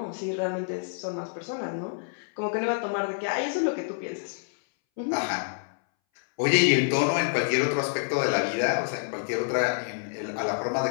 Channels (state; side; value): silent; right; 60 dB below the other